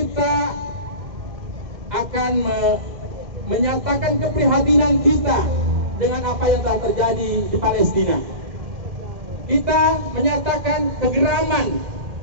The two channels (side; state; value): left; late; 2.1 ms